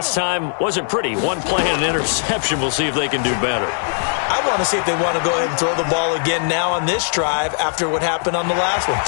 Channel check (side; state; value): right; silent; digital silence